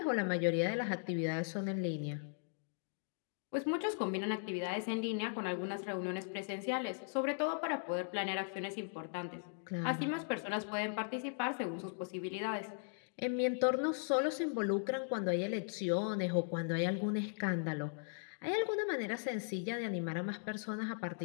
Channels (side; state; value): right; silent; digital silence